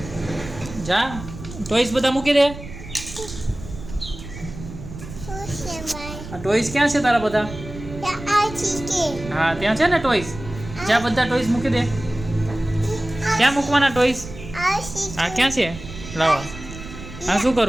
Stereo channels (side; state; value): right; noise; rumble, 12 dB below the sound